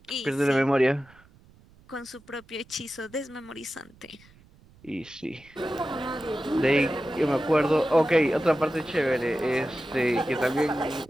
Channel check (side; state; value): right; noise; rumble, 27 dB below the sound